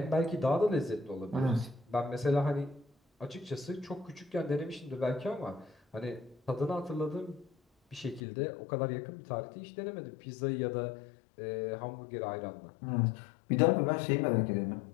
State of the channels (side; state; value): right; drops out; at 8.2 s